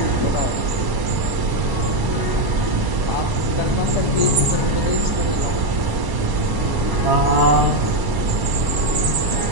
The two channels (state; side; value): late; left; 1.0 ms